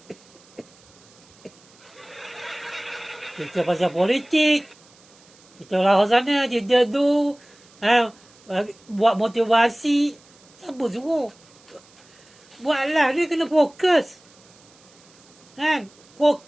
Cerita pasal politik. Kita lah sana je tu. Buat motivasi. Siapa suruh? Buatlah, dia kena fokus. Kan?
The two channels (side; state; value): right; noise; hiss, 27 dB below the sound